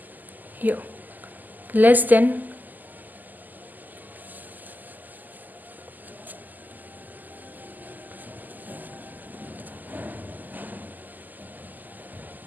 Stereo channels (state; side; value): late; left; 0.084 ms